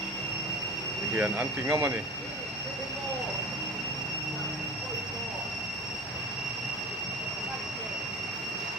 ti hian an ti ngam ani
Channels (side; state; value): left; noise; hum, 25 dB below the sound